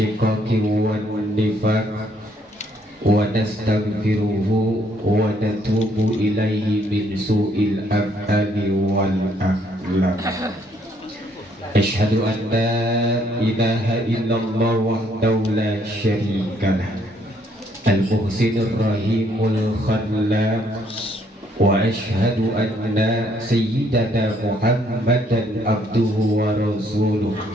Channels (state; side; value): normal; both; correlation 0.68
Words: wan nifaq wa nastaghfiruhu wa natubu ilaihi min su'il af'ali wal akhlaq. Asyhadu an la ilaha illallah wahdahu la syarikalah al-muhsinur rahimul khallaq wa asyhadu anna sayyidana Muhammadan abduhu wa rasuluh